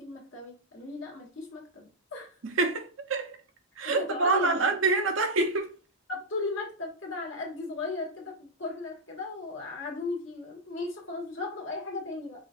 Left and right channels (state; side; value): normal; both; correlation -0.02